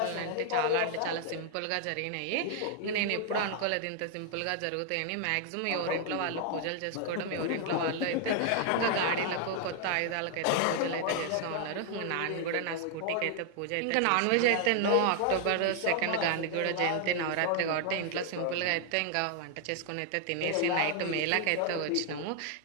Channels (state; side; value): different; both; correlation 0.00